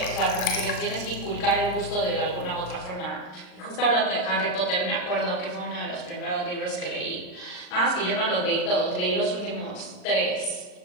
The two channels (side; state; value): right; late; 39 ms